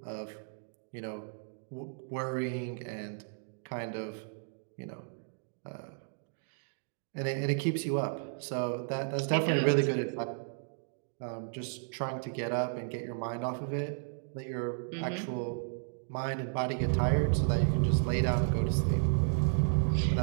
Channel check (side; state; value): left; silent; digital silence